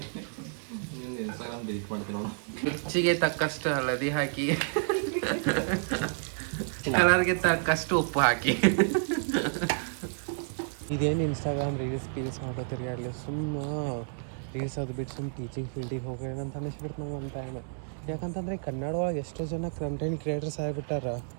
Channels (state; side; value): silent; left; digital silence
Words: ಇನ್ಸ್ಟಾಗ್ರಾಮ್ ಡಿಲೀಟ್ ಮಾಡ್ತೀನಿ ನೋಡು. ರುಚಿಗೆ ತಕ್ಕಷ್ಟು ಹಳದಿ ಹಾಕಿ, ಕಲರ್ಗೆ ತಕ್ಕಷ್ಟು ಉಪ್ಪು ಹಾಕಿ. ಇದೇನು ಇನ್ಸ್ಟಾಗ್ರಾಮ್ ರೀಲ್ಸ್ ಮಾಡ್ಕೋತೀರಿ ಅಲ್ಲಿ ಸುಮ್ಮ ರೀಲ್ಸ್ ಅದು ಬಿಟ್ಟು ಸುಮ್ಮ ಟೀಚಿಂಗ್ ಫೀಲ್ಡಿಗೆ ಹೋಗ್ರಿ ಅಂತ ಅನ್ನಿಸ್ಬಿಡ್ತು ನಂಗೆ ಒಂದು ಟೈಮ್. ಯಾಕಂತಂದರೆ ಕನ್ನಡ ಒಳಗೆ ಎಷ್ಟೋ ಜನ ಕಂಟೆಂಟ್ ಕ್ರಿಯೇಟರ್ಸ್ ಆಗಿಬಿಟ್ಟಾರ.